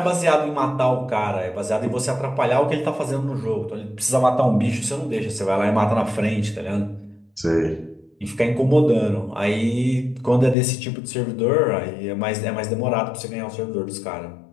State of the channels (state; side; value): drops out; right; at 10.6 s